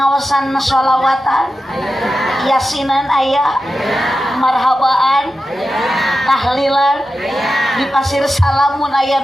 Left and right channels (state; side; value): normal; both; correlation 0.91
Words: sholawatan, yasinan aya, marhabaan, pasir salamun aya